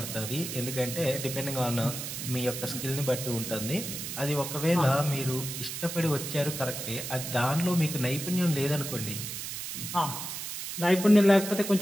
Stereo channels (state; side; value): noise; right; hiss, 6 dB below the sound